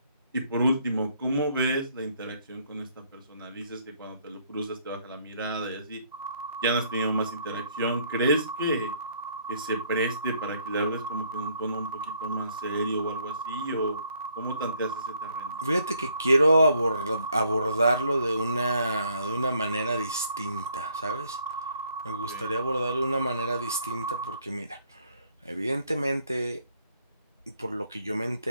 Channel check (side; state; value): both; inverted; correlation -0.66